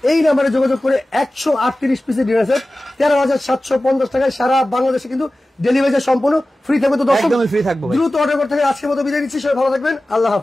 এই নাম্বারে যোগাযোগ করে 138 পিসের ডিনার সেট 13,750 টাকায় সারা বাংলাদেশে কিন্তু ডেলিভারি সম্পূর্ণ ফ্রি থাকবে। তো দর্শক একদমই ফ্রি থাকবে, দ্রুত অর্ডার করতে হবে। আজকের মতো বিদায় নিচ্ছি, সবাই ভালো থাকবেন, আল্লাহ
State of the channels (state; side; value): normal; both; correlation 0.96